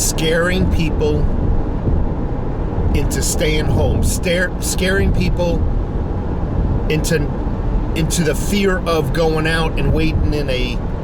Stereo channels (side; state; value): both; identical; correlation 1.00